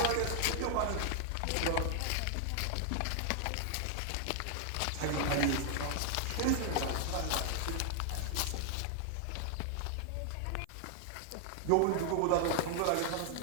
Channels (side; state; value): both; different; correlation 0.00